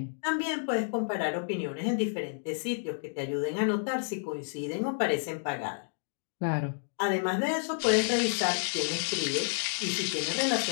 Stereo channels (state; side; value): silent; right; digital silence